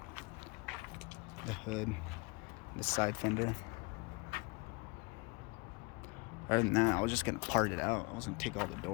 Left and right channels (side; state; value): right; quieter; 28.2 dB